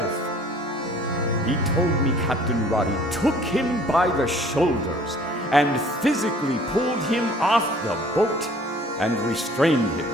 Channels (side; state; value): both; normal; correlation 0.53